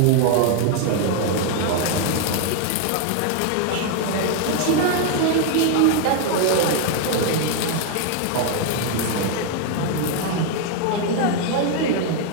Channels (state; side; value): different; both; correlation 0.00